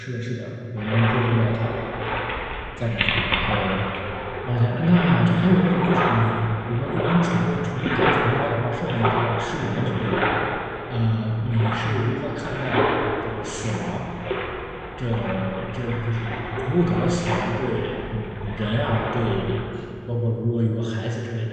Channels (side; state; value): both; identical; correlation 1.00